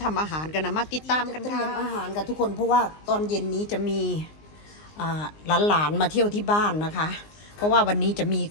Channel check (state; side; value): late; right; 19 ms